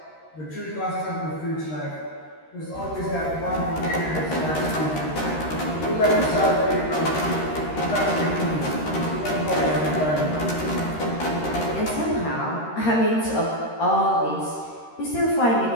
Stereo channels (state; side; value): late; right; 13 ms